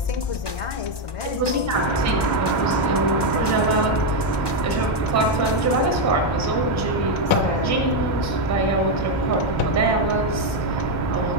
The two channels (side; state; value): right; late; 1.2 ms